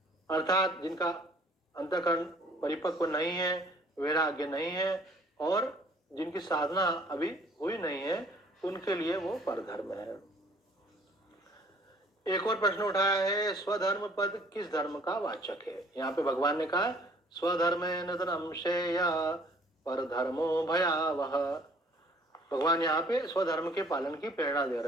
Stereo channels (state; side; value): normal; both; correlation 0.56